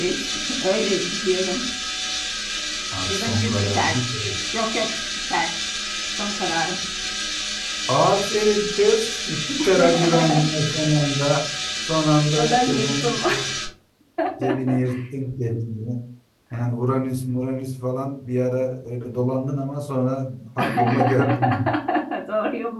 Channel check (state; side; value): identical; both; correlation 1.00